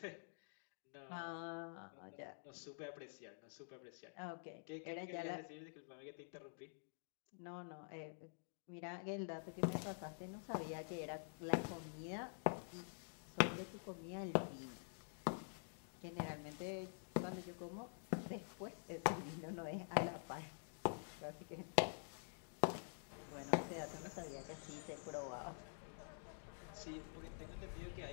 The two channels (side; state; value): right; silent; digital silence